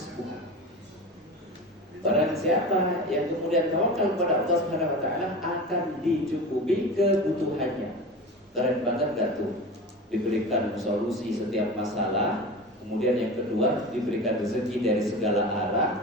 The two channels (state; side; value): normal; both; correlation 0.30